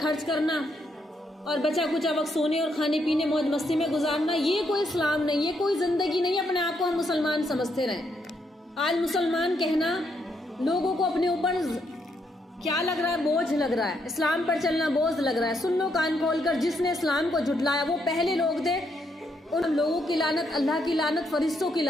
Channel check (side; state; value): both; normal; correlation 0.77